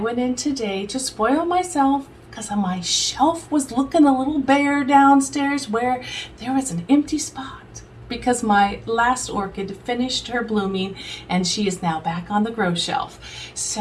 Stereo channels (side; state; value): both; identical; correlation 1.00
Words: in today to spoil myself because my shelf was looking a little bare downstairs where there was an empty spot because my last orchid finished her blooming and she is now back on the grow shelf.